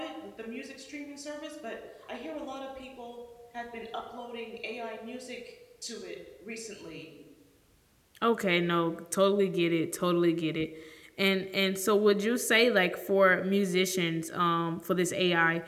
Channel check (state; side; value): identical; both; correlation 1.00